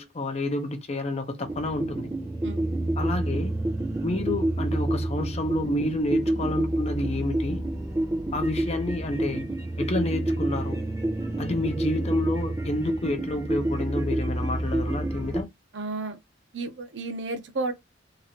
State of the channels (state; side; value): normal; both; correlation 0.78